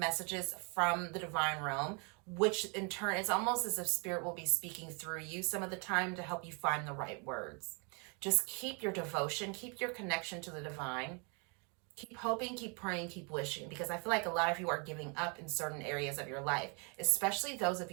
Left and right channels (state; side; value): quieter; left; 34.5 dB